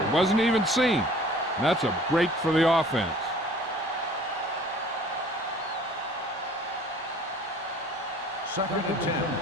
Wasn't even seen. And that's a break for the offense. Second and 10.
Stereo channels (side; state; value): both; normal; correlation 0.50